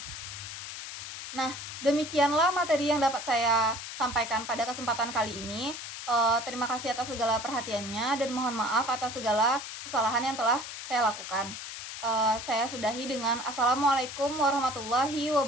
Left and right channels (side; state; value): left; noise; hiss, 9 dB below the sound